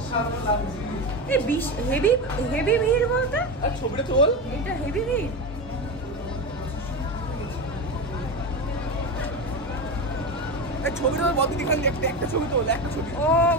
লাগছে এই হেভি হেভি ভিড় বলতে আর ছবিটা তোল এটা হেভি ভিড় এই ছবিটা বন্ধ দেখান একটা ছবি তোল একটা ছবি ও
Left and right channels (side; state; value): both; normal; correlation 0.19